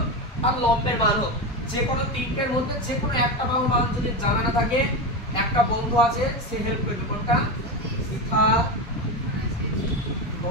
আর লম্বের মান হোক যে কোনো তিনটের মধ্যে যে কোনো একটা বাহুর মান যদি জানা না থাকে একটা বন্ধু আছে সে হেল্প করবে কোনটা শিখা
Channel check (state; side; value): normal; both; correlation 0.17